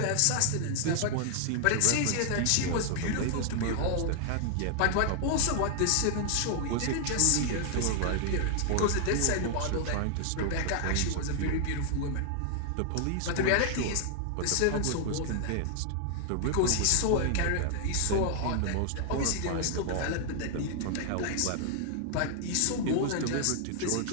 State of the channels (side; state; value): both; different; correlation 0.00